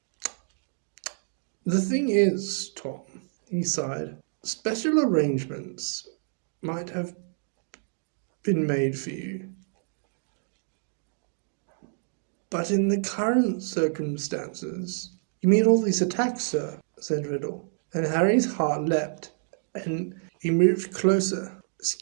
"The thing is, Tom," he sighed, "special arrangements might have been made for you. But in the current circumstances—" "You mean all these attacks, sir?" said Riddle. And Harry's heart leapt, and he moved closer,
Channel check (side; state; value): left; silent; digital silence